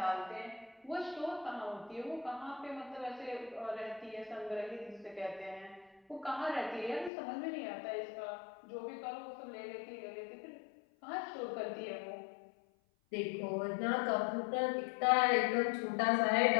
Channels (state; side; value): drops out; right; at 7.1 s